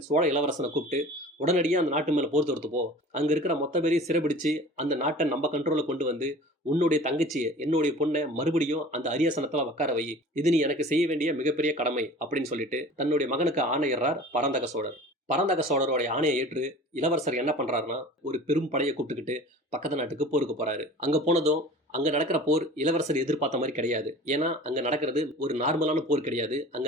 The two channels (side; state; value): both; normal; correlation 0.42